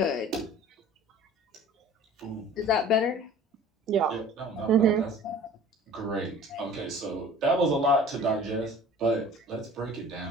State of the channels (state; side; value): normal; both; correlation 0.46